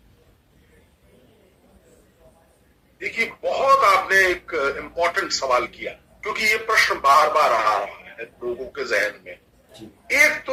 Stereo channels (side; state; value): both; identical; correlation 1.00